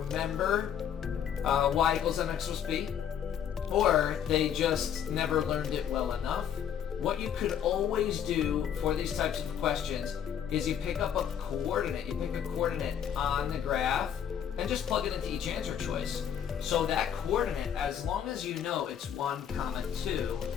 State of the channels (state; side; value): quieter; right; 8.9 dB